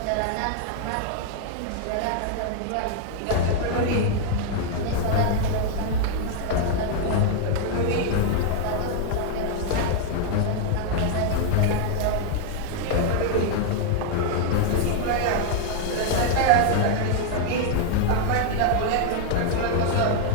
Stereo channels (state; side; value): different; both; correlation 0.00